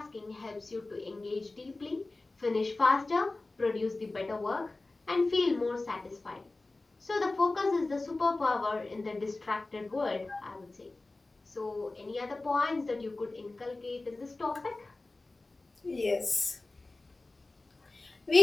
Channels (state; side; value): quieter; right; 3.2 dB